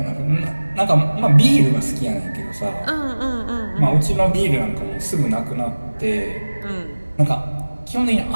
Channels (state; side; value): inverted; both; correlation -1.00